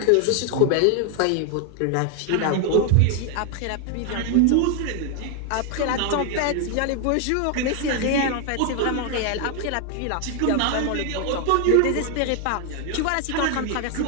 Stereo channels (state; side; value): different; both; correlation 0.01